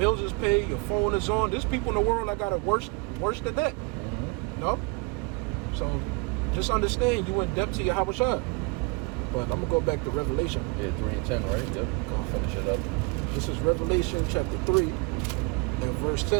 is paid, your phone is on. There's people in the world that got it worse than that. You know? So just understand you in debt to Yahweh Shai. But I'm gonna go back to Revelation. 3 and 10, right? I'll finish it up. This is Revelation chapter 3 and verse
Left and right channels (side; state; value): left; quieter; 28.7 dB